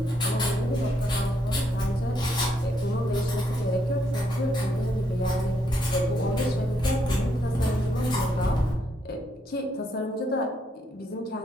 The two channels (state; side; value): normal; both; correlation 0.75